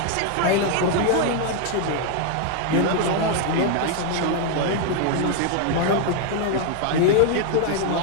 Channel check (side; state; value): both; different; correlation 0.00